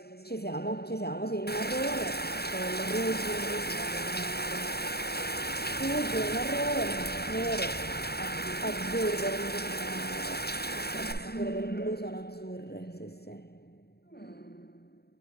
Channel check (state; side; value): late; right; 0.47 ms